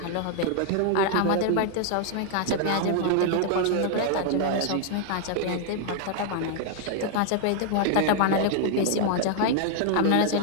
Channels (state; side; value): different; both; correlation 0.00